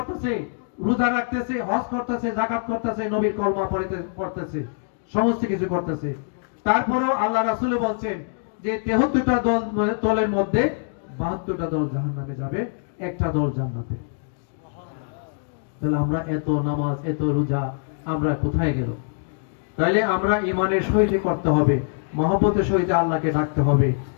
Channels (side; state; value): right; silent; digital silence